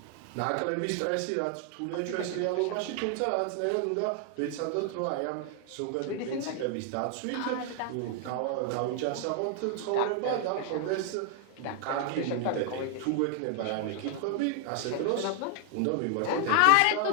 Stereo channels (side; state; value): both; different; correlation 0.00